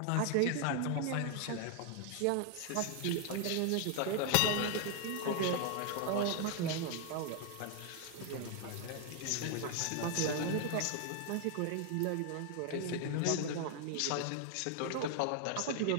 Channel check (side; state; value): both; different; correlation 0.00